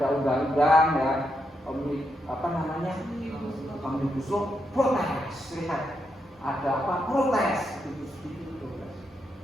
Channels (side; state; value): both; normal; correlation 0.82